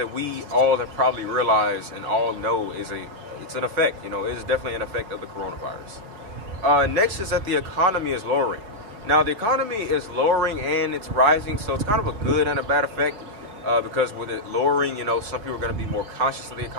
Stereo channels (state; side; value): late; left; 5.1 ms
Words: we all have probably realized and all know it's an effect. It is definitely an effect of the coronavirus. Next is that the economy is lowering. Now, the economy is lowering and it's rising, so it's kind of a good and a bad effect. Because with it lowering, some people are going to be more conscious of the